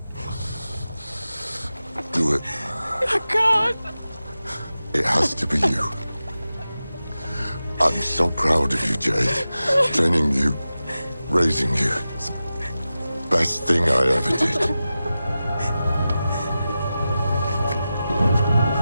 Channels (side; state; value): both; inverted; correlation -0.93